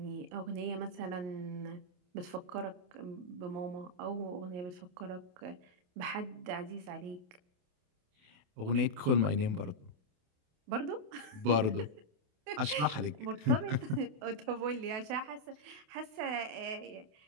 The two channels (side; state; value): left; late; 28 ms